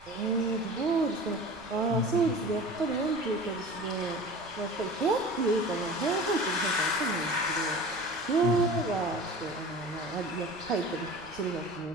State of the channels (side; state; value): right; noise; rumble, 24 dB below the sound